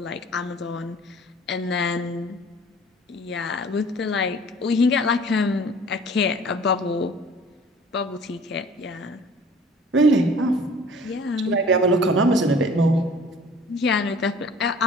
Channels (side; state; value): both; normal; correlation 0.49